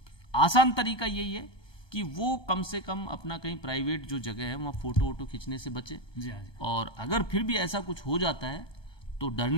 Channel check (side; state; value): right; late; 1.2 ms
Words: आसान तरीका यही है कि वो कम से कम अपना कहीं प्राइवेट जो जगह है वहाँ फ़ोटो खींचने से बचे। और अगर फिर भी ऐसा कुछ हो जाता है तो